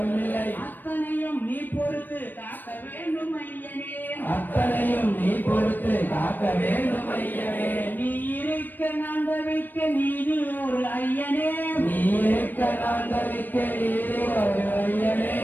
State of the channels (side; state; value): right; late; 0.091 ms